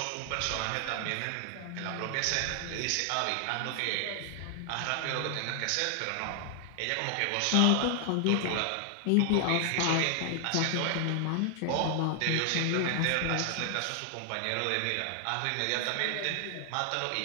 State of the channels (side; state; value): both; different; correlation 0.00